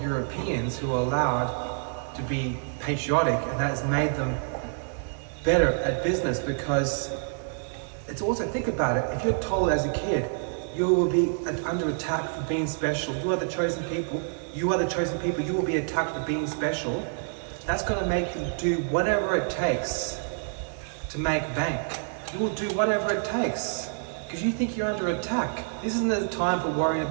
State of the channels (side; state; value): left; silent; digital silence